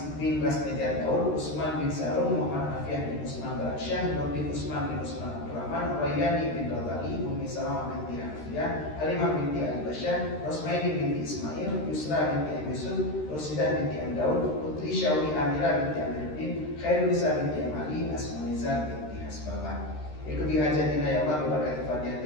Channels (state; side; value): late; right; 13 ms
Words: bin Rasnijar Daud Usman bin Sarum Muhammad Afiah bin Usman Baraksyah Nurdin Usman bin Usman Abdurrahman Rayani bin Radali Umi Salamah binti Hafiyah Halimah binti Al-Basyah Rosmaini binti Ismail Yusra binti Am Yusuf Rosidah binti Am Daud Putri Syawi Amira binti Amiruddin Khairunisa binti Am Ali Asmanizar binti Hasbabah. Ikuti hajatina ya Allah berkati Fatihah